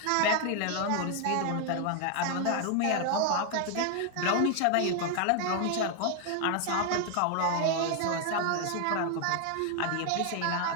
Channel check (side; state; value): both; different; correlation 0.00